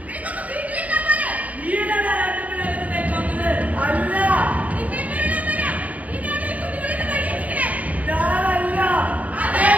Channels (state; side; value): late; left; 0.071 ms